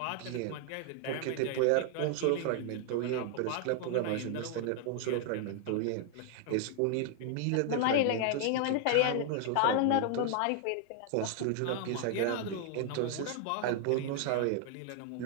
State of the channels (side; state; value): both; different; correlation 0.00